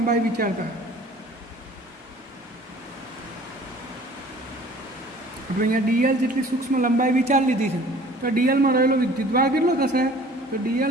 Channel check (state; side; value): normal; both; correlation 0.49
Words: વિચારતા આપણે અહીંયા DL જેટલી સૂક્ષ્મ લંબાઈ વિચાર લીધી છે. તો DLમાં રહેલો વિદ્યુતભાર કેટલો થશે, તો